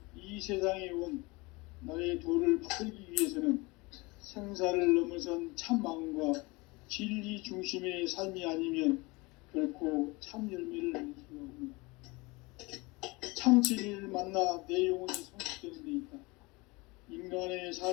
이 세상에 온 나의 도를 받들기 위해서는 생사를 넘어선 참 마음과 진리 중심의 삶이 아니면 결코 참 열매를 낼 수가 없노라. 참 진리를 만나 내 영혼이 성숙되는 데 있다. 인간의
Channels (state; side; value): quieter; right; 24.9 dB